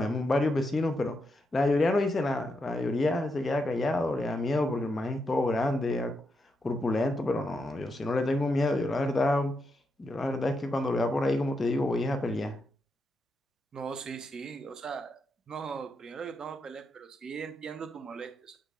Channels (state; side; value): normal; both; correlation 0.83